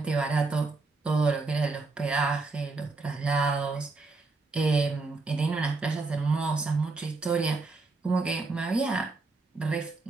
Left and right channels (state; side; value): quieter; left; 3.7 dB